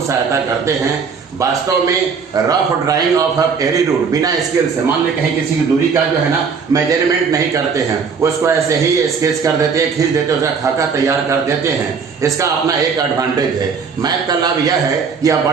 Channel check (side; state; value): left; quieter; 5.7 dB